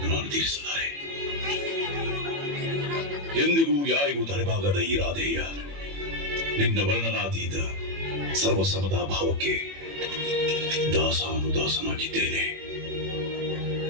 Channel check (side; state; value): left; late; 21 ms